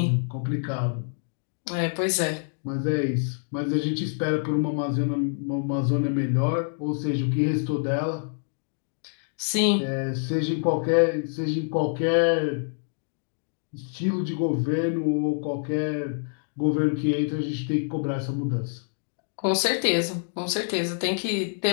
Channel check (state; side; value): silent; right; digital silence